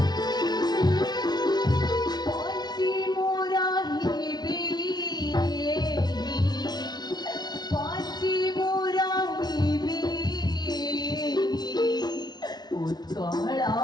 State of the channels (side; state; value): right; late; 0.19 ms